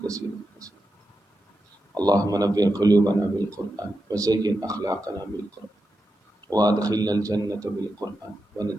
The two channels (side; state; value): both; normal; correlation 0.89